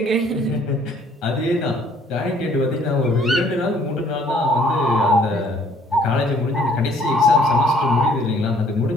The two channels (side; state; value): both; normal; correlation 0.60